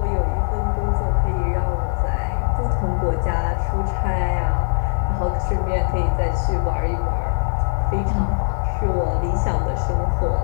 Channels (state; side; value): silent; right; digital silence